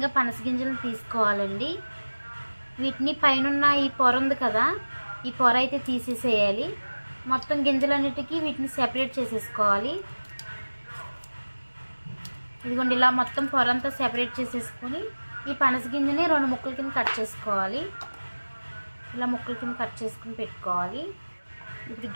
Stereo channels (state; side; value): inverted; both; correlation -1.00